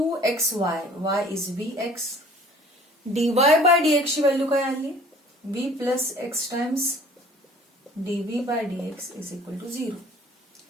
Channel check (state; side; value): normal; both; correlation 0.51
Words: y is v x. Dy by dx ची व्हॅल्यू काय आली, v plus x times dv by dx is equal to 0.